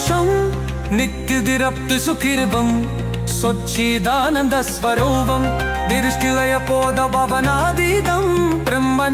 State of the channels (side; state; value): both; identical; correlation 1.00